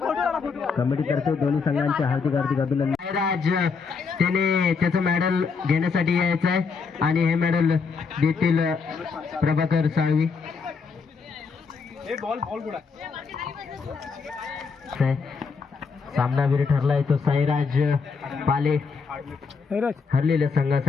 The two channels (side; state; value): right; quieter; 5.1 dB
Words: कमिटी तर्फे दोन्ही संघांचे हार्दिक हार्दिक अभिनंदन. साईराज त्याने त्याचं मेडल घेण्यासाठी यायचं आहे आणि हे मेडल देतील प्रभाकर साळवी. सामनावीर ठरलाय तो साईराज पाले. हरलेल्या